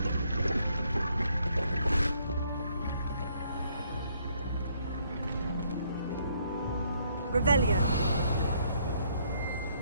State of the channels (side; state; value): both; inverted; correlation -0.69